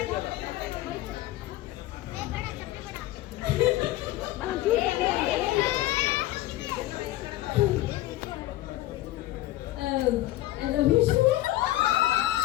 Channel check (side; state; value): right; quieter; 15.9 dB